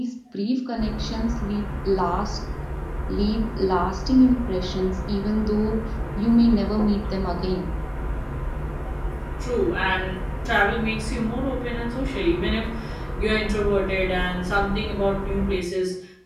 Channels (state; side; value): identical; both; correlation 1.00